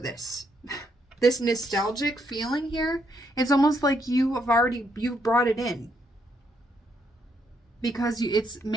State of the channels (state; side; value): normal; both; correlation 0.75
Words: This nostalgic feeling here. It's almost like you've brought it in. Because